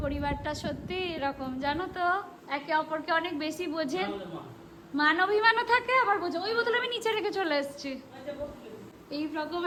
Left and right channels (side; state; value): both; identical; correlation 1.00